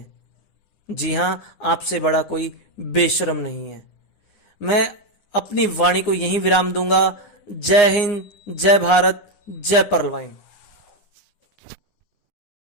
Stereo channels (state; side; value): late; right; 9.7 ms